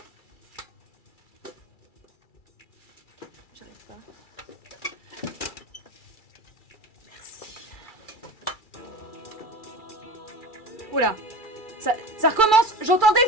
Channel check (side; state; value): right; late; 2.3 ms